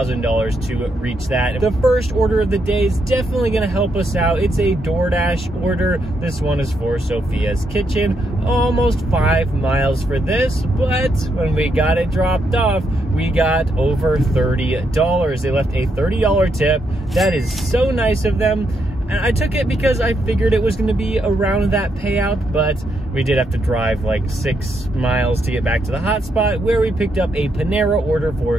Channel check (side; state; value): both; normal; correlation 0.79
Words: to reach that. The first order of the day is definitely gonna help us out. It's a DoorDash order. This one is for Sophia's Kitchen. Almost 5 miles for this, but when we got it dropped off, we got over $30. They left a $30 tip. That is so nice of them. And I took it because I figured it was going to be around that payout, but we did have to drive like 6 miles to get back to the hotspot where we picked up a Panera order for